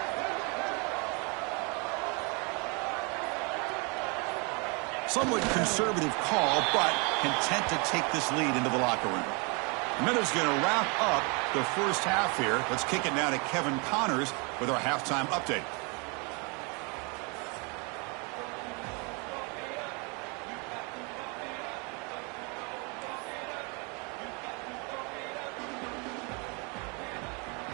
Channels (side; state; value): left; quieter; 32.2 dB